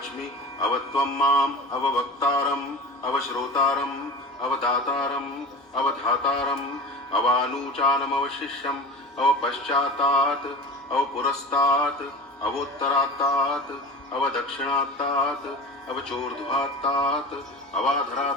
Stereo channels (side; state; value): both; normal; correlation 0.33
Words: अवत्वं माम् अववक्तारम् अवश्रोतारम् अवदातारम् अवधातारम् अवानूचानमवशिष्यम् अवपश्चातात् अवपुरस्तात् अवोत्तरात्तात् अवदक्षिणात्तात् अवचोर्ध्वात्तात्